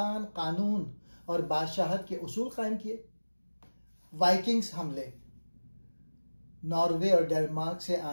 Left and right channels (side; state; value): both; inverted; correlation -1.00